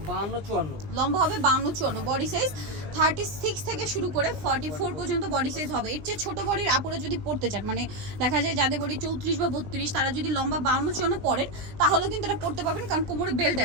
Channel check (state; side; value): late; left; 20 ms